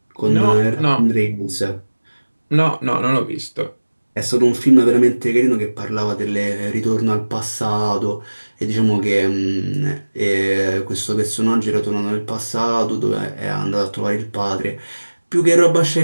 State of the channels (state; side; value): inverted; both; correlation -1.00